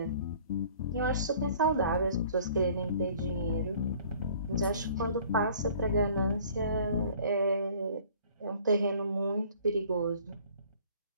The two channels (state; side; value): inverted; both; correlation -0.53